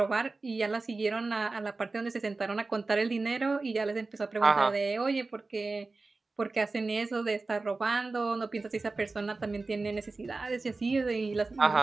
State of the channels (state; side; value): quieter; left; 3.6 dB